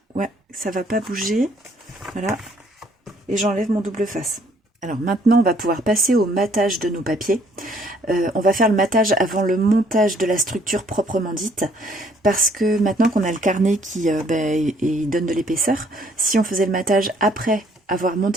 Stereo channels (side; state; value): both; normal; correlation 0.63